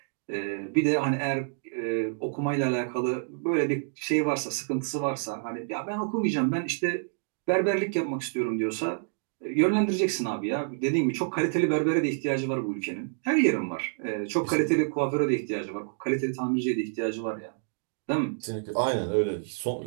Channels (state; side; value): silent; left; digital silence